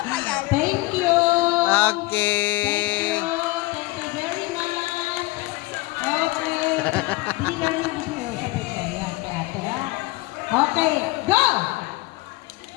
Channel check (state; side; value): quieter; right; 21.4 dB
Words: Thank you. Okay. Thank you very much. Okay. Bigyan ng video sa pito. Yan, kay ate, ha? Okay, go!